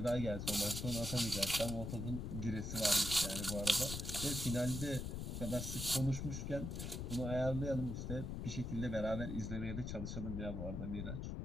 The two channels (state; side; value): noise; left; rumble, 4 dB below the sound